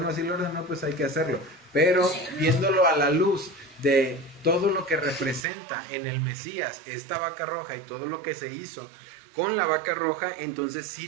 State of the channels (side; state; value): left; drops out; at 5.4 s